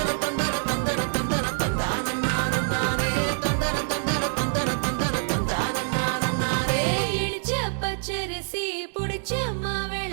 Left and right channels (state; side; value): silent; left; 61 dB below the other